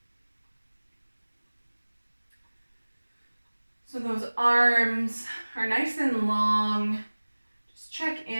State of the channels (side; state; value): both; inverted; correlation -1.00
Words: So those arms are nice and long. Just check